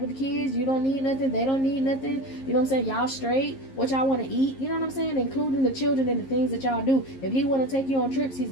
the kids? You don't need nothing, they don't need nothing, you know what I'm saying? Y'all straight? What y'all want to eat? You know what I'm saying? Including the children and the things that y'all do. If he want to take you on trips, he's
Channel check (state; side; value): late; right; 11 ms